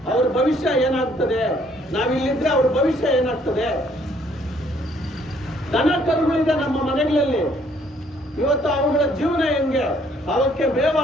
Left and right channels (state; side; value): normal; both; correlation 0.64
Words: ಅವ್ರ ಭವಿಷ್ಯ ಏನಾಗ್ತದೆ, ನಾವಿಲ್ಲಿದ್ರೆ ಅವ್ರ ಭವಿಷ್ಯ ಏನಾಗ್ತದೆ. ದನ ಕರುಗಳಿದೆ ನಮ್ಮ ಮನೆಗಳಲ್ಲಿ, ಇವತ್ತು ಅವುಗಳ ಜೀವನ ಹೆಂಗೆ, ಅವಕ್ಕೆ ಮೇವು